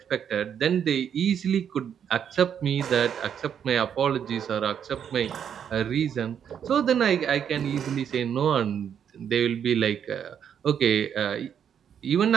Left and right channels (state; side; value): quieter; left; 8.4 dB